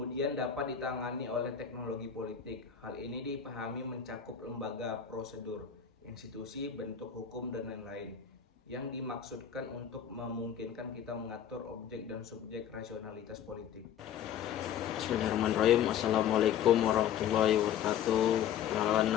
dapat ditangani oleh teknologi politik. Hal ini dipahami mencakup lembaga, prosedur, institusi, bentuk hukum, dan lain-lain, yang dimaksudkan untuk memungkinkan kita mengatur objek dan subjek rasionalitas politik. Bismillahirrahmanirrahim. Assalamualaikum warahmatullahi wabarakatuh. Perkenalkan,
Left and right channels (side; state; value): right; quieter; 9.0 dB